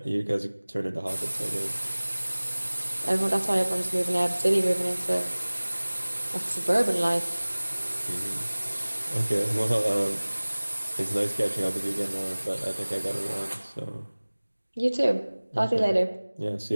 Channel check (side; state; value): both; inverted; correlation -1.00